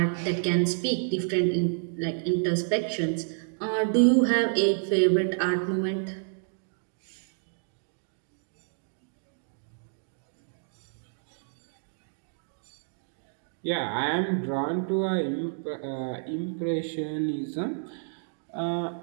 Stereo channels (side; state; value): left; silent; digital silence